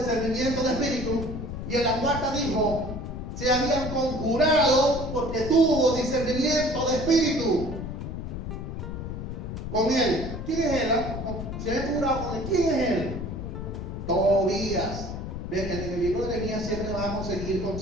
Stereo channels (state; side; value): noise; left; rumble, 6 dB below the sound